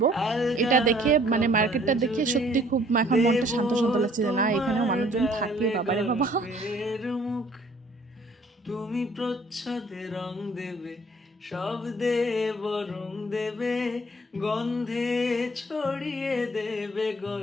এটা দেখে মানে মার্কেটটা দেখে সত্যি খুব এখন মনটা শান্ত শান্ত লাগছে যে না এখানেও মানুষজন থাকে, বাবারে বাবা। তুমি প্রচ্ছদে রং দেবে, শব্দে বরং দেবে, গন্ধে ছড়িয়ে দেবে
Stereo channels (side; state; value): both; normal; correlation 0.58